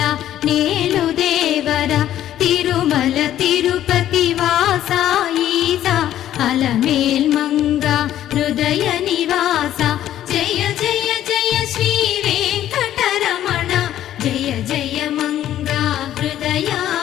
నేలు దేవర తిరుమల తిరుపతి వాస ఈసా అలమేల్ మంగ హృదయ నివాస జయ జయ జయ శ్రీ వెంకటరమణ జయ జయ మంగ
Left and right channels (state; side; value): quieter; right; 12.1 dB